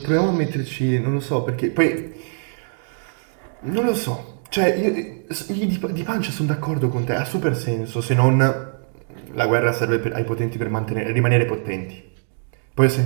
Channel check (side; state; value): left; silent; digital silence